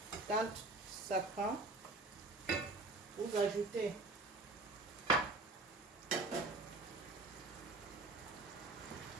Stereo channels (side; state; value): left; quieter; 3.1 dB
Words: Quand ça prend, vous ajoutez